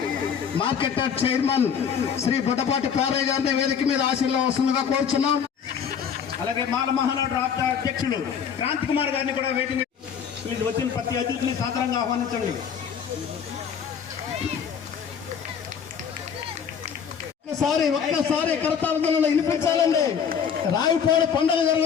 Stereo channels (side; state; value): right; quieter; 7.4 dB